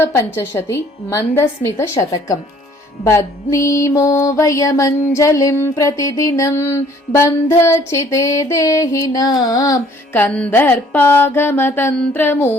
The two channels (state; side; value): normal; both; correlation 0.58